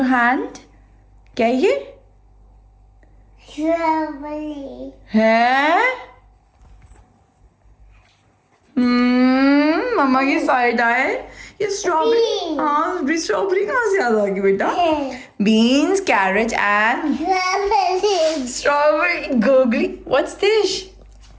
your hand? क्या है ये? Strawberry. है मम्मा की side आए ये strawberry. Beans. हाँ strawberry कहाँ से याद आ गई बेटा? Beans carrot and Strawberry. Strawberry googly. What's this?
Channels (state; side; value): identical; both; correlation 1.00